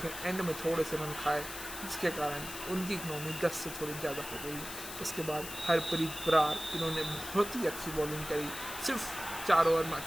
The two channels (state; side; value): noise; left; hiss, 9 dB below the sound